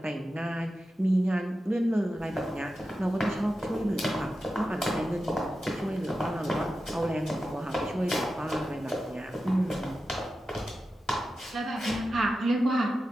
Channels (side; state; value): both; normal; correlation 0.91